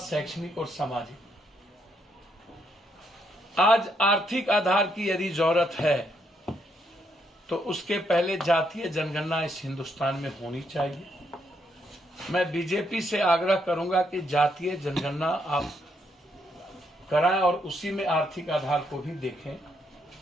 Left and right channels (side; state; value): both; normal; correlation 0.76